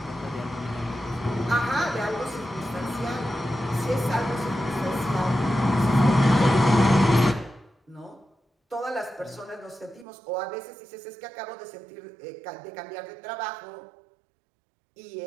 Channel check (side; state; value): left; drops out; at 10.1 s